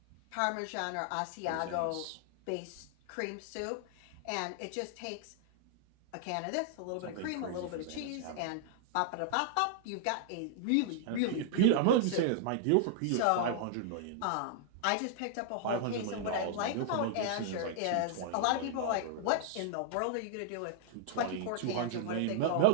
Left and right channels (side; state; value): both; different; correlation -0.01